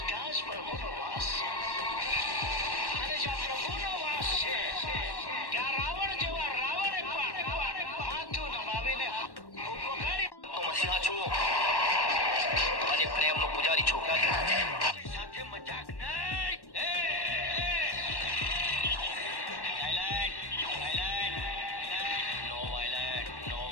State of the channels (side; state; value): right; late; 1.1 ms